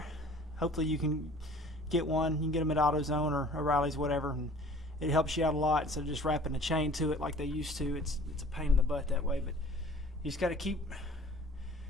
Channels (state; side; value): normal; both; correlation 0.49